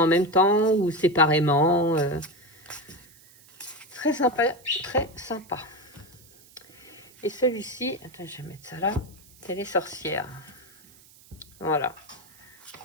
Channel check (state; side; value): noise; right; hiss, 25 dB below the sound